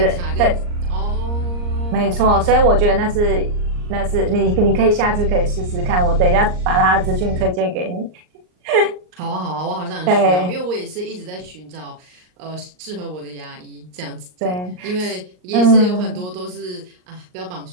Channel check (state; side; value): late; left; 39 ms